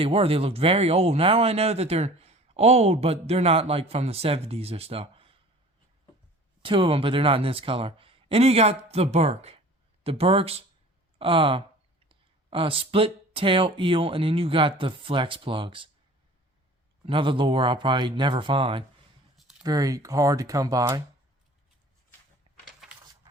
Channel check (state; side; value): normal; both; correlation 0.45